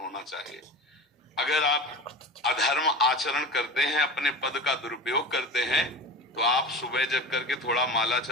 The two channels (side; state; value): both; normal; correlation 0.31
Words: चाहिए। अगर आप अधर्म आचरण करते हैं, अपने पद का दुरुपयोग करते हैं, तो आप सुबह जग करके थोड़ा माला